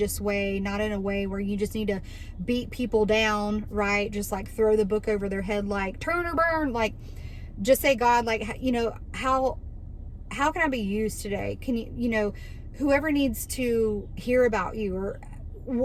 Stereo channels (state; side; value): identical; both; correlation 1.00